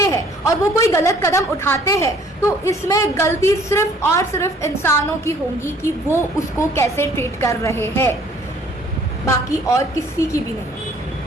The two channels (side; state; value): both; normal; correlation 0.57